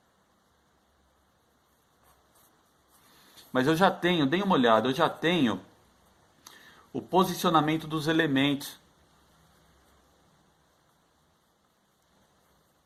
Mas eu já tenho, dê uma olhada, eu já tenho o posicionamento dos elementos.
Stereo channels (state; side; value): identical; both; correlation 1.00